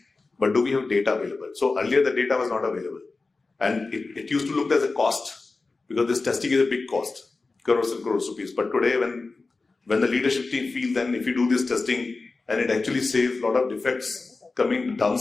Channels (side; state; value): right; quieter; 3.8 dB